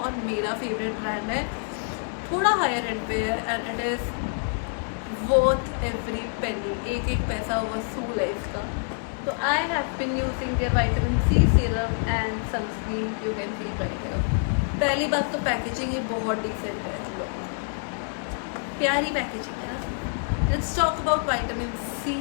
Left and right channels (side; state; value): right; silent; 59 dB below the other